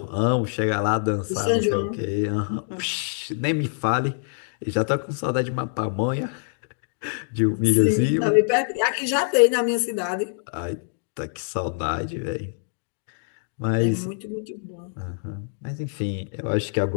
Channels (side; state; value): right; silent; digital silence